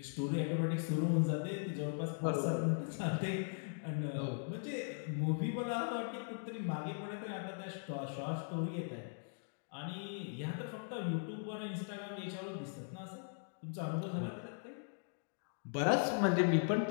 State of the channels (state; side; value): silent; right; digital silence